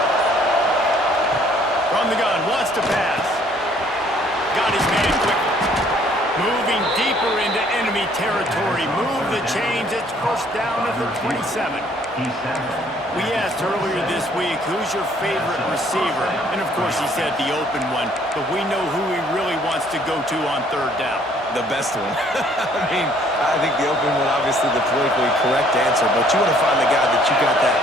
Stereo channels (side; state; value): both; normal; correlation 0.61